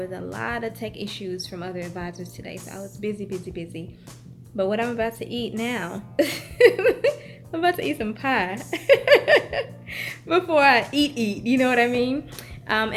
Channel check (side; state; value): both; identical; correlation 1.00